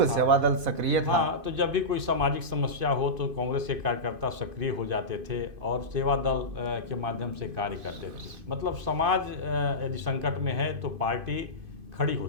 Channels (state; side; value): late; left; 2.5 ms